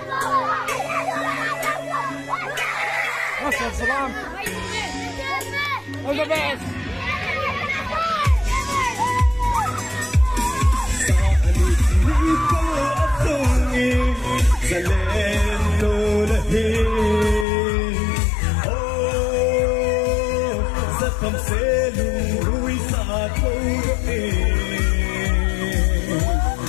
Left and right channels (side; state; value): right; drops out; at 17.4 s